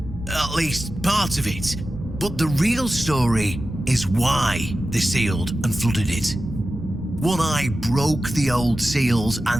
at least part of it. But the real story is why they sealed and flooded it. One Eye broke the old seals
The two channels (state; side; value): normal; both; correlation 0.93